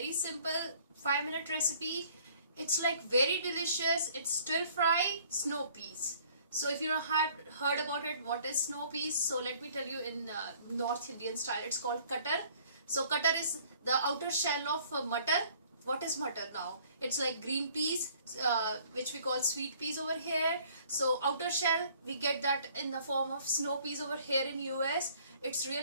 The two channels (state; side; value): inverted; both; correlation -0.57